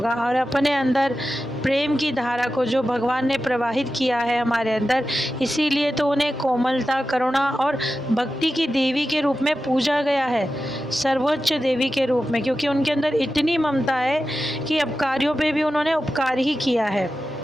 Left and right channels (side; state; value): both; normal; correlation 0.93